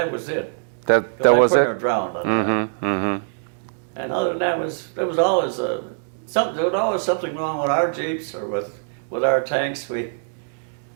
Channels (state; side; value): silent; left; digital silence